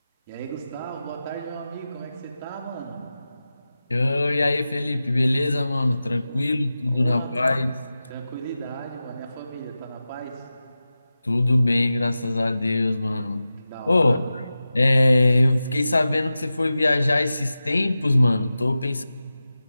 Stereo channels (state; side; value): inverted; both; correlation -0.94